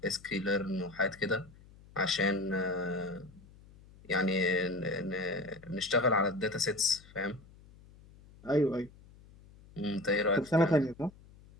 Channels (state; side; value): noise; left; hum, 23 dB below the sound